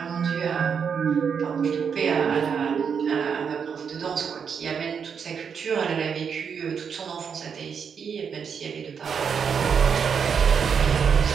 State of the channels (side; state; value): left; quieter; 6.7 dB